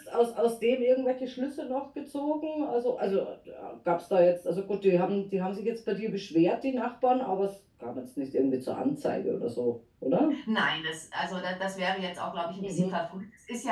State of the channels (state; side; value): identical; both; correlation 1.00